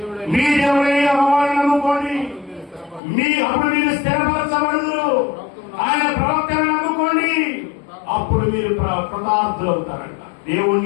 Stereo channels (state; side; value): drops out; right; at 3.0 s